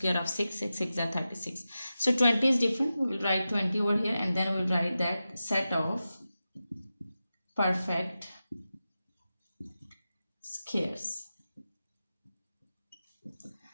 of 6. 6 6 are 36. So 20 is different. We will write 20 over here, and then we will write that set of perfect squares.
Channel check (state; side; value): inverted; both; correlation -0.93